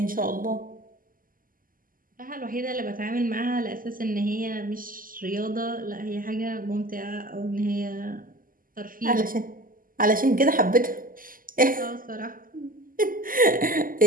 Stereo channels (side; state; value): left; late; 0.41 ms